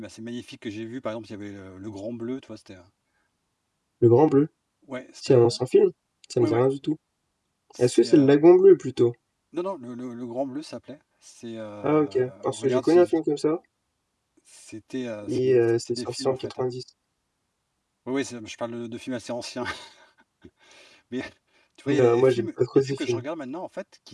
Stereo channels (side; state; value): both; identical; correlation 1.00